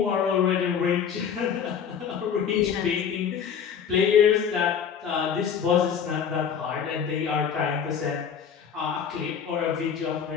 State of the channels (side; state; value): right; quieter; 7.6 dB